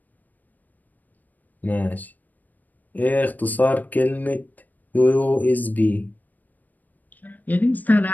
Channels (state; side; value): late; right; 0.084 ms